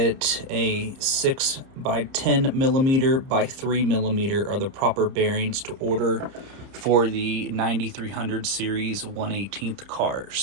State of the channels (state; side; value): late; left; 30 ms